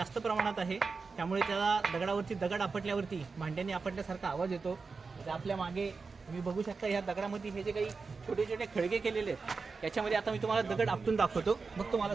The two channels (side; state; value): left; quieter; 4.6 dB